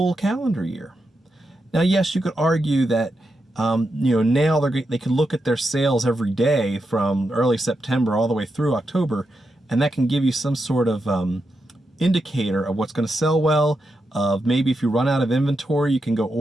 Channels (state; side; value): normal; both; correlation 0.86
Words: calendar year. Now, yes, you could argue that now they can look at their sales every day from early September all the way through October, and that can give you some sort of indicator of what's going to sell well, of maybe if you run out of inventory, you can go